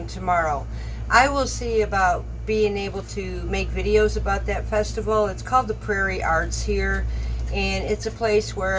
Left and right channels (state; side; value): identical; both; correlation 1.00